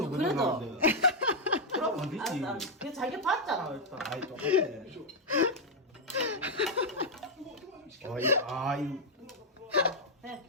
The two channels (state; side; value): normal; both; correlation -0.02